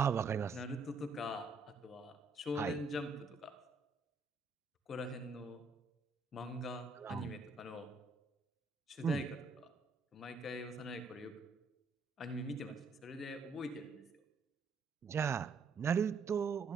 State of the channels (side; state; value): left; quieter; 3.9 dB